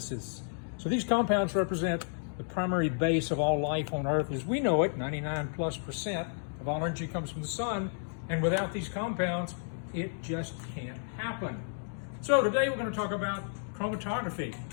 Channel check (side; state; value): right; silent; digital silence